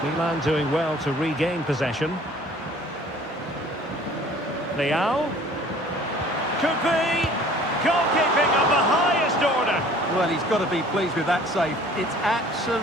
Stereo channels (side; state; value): both; normal; correlation 0.51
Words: Milan doing well to regain possession. Leao. Could be. Goalkeeping of the highest order. Well, he's got to be pleased with that save. It's